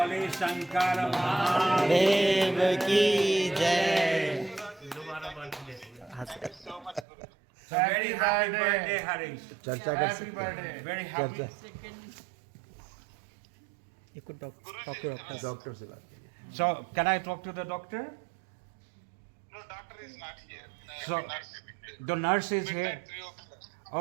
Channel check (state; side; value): drops out; left; at 7.1 s